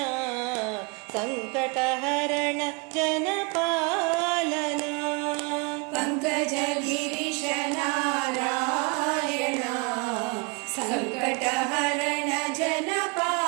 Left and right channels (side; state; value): left; quieter; 30.6 dB